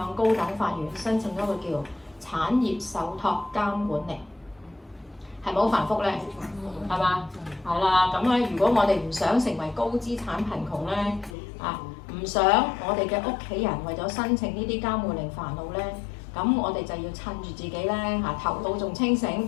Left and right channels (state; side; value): drops out; right; at 11.4 s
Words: 高等法院申請一個叫產業受託監管令，係咪好繁複咧？係嘛？係啦，咁咧如果我哋唔想成為高資產貧窮咧，唔想我哋嘅屋企人為咗申請呢啲監護令煩惱咧，咁我哋就要趁住自己咧頭腦仲清